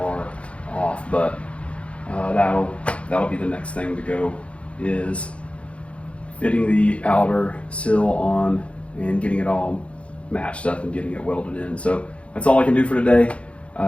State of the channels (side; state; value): right; late; 0.061 ms